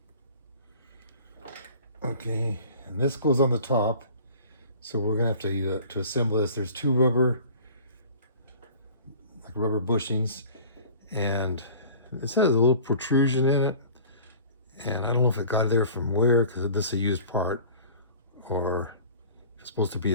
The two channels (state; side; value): inverted; both; correlation -0.44